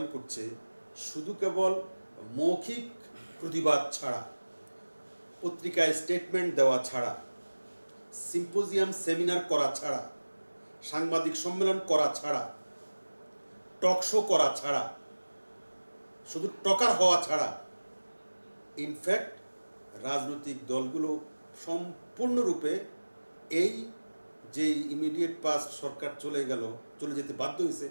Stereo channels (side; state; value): both; inverted; correlation -1.00